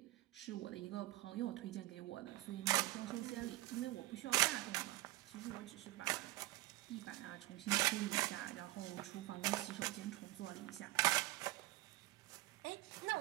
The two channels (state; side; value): quieter; left; 18.7 dB